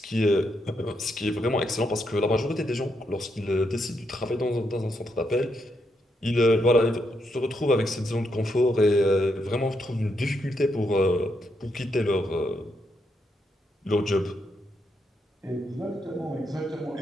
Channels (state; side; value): normal; both; correlation 0.80